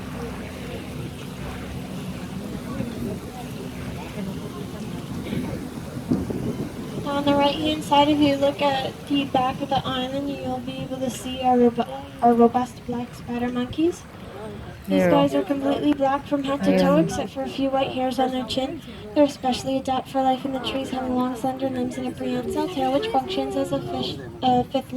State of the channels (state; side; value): identical; both; correlation 1.00